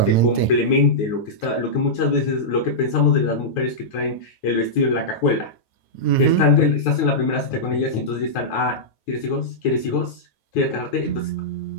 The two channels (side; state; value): right; late; 9.3 ms